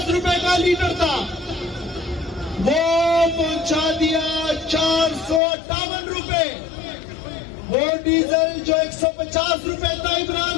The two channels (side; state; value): right; drops out; at 5.4 s